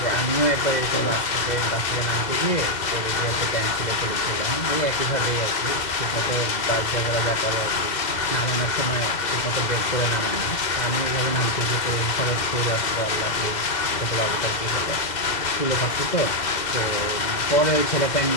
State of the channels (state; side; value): late; right; 2.0 ms